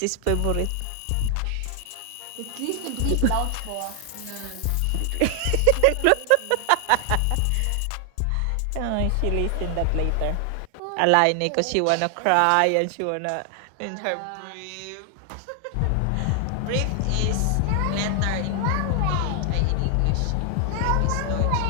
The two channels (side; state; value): both; different; correlation 0.00